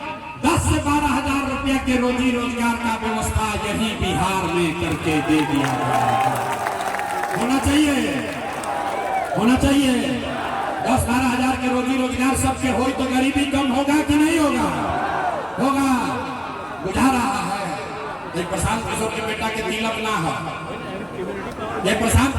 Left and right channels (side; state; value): both; identical; correlation 1.00